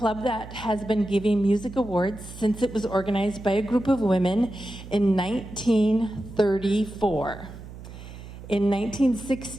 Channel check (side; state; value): right; noise; hum, 14 dB below the sound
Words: that has been giving music awards since it was organized by a group of women in 1934. In